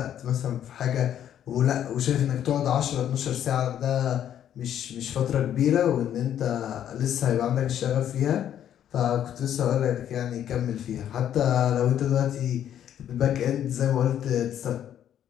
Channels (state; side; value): quieter; right; 10.3 dB